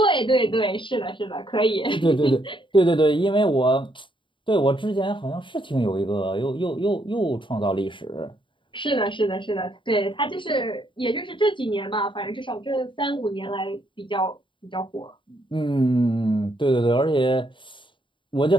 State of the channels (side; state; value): right; late; 0.24 ms